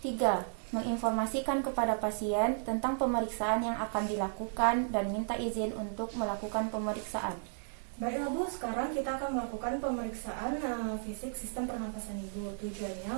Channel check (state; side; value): silent; left; digital silence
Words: 3. Menginformasikan kepada pasien tentang pemeriksaan yang akan dilakukan dan minta izin untuk melakukan pemeriksaan. Baiklah Bu, sekarang kita akan melakukan pemeriksaan fisik sistem pernafasan Ibu. Tujuannya